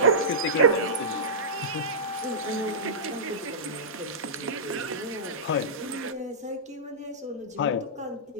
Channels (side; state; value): both; normal; correlation -0.16